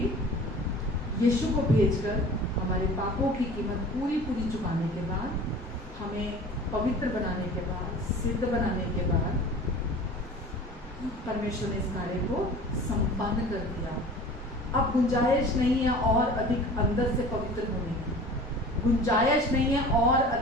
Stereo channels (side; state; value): both; normal; correlation 0.42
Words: यीशु को भेजकर हमारे पापों की कीमत पूरी चुकाने के बाद, हमें पवित्र बनाने के बाद, सिद्ध बनाने के बाद, परमेश्वर ने इस कार्य को संपन्न कर दिया। अब गुंजाइश नहीं है और अधिक अंदर से पवित्र होने की, गुंजाइश नहीं है और